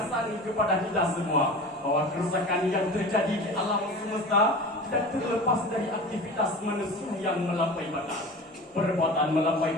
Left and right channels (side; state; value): both; normal; correlation 0.35